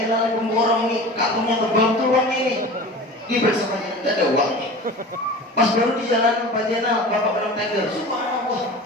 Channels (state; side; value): normal; both; correlation 0.36